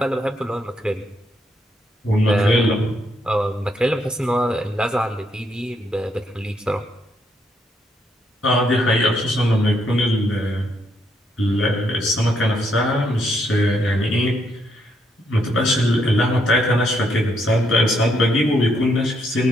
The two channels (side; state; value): both; normal; correlation 0.75